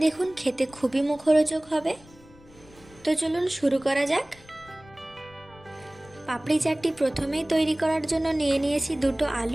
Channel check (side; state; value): left; noise; rumble, 24 dB below the sound